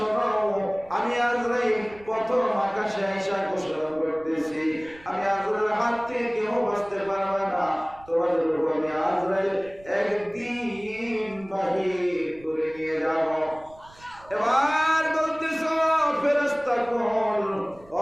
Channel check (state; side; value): noise; right; rumble, 24 dB below the sound